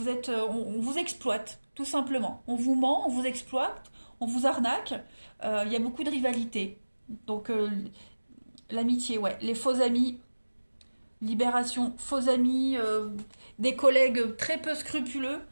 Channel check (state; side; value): inverted; both; correlation -1.00